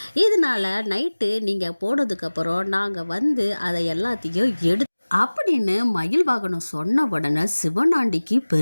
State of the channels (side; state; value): both; inverted; correlation -1.00